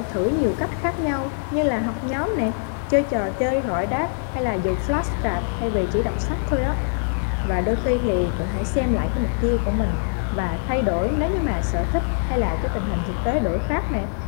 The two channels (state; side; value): silent; right; digital silence